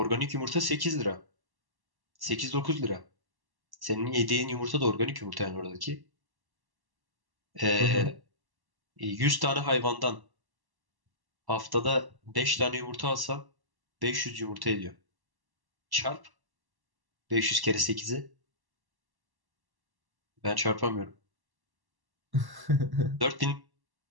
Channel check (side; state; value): left; late; 1.1 ms